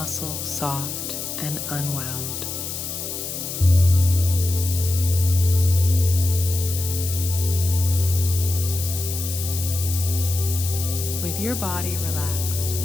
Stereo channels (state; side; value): noise; left; hiss, 6 dB below the sound